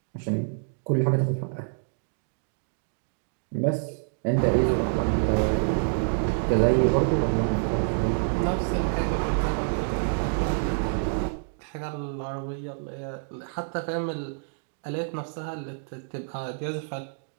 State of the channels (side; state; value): left; silent; digital silence